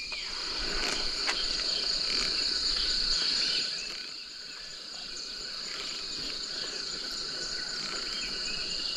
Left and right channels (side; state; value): both; identical; correlation 1.00